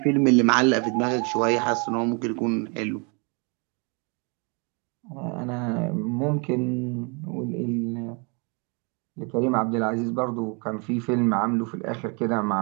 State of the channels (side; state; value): left; quieter; 33.8 dB